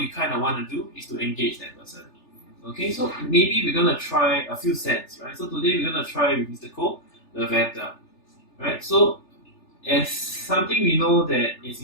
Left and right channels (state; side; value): late; right; 3.4 ms